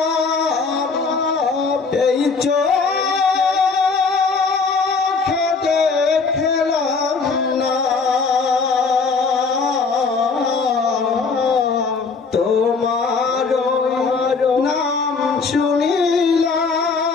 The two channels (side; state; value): right; quieter; 4.7 dB